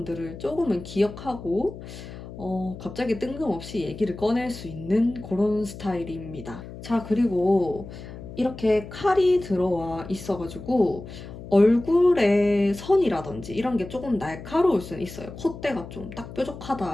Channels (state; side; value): noise; left; hum, 13 dB below the sound